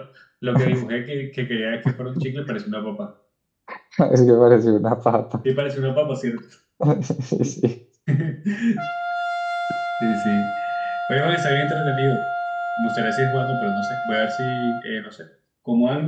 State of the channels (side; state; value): both; identical; correlation 1.00